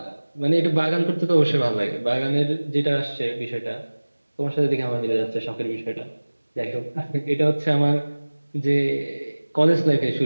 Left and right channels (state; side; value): inverted; both; correlation -1.00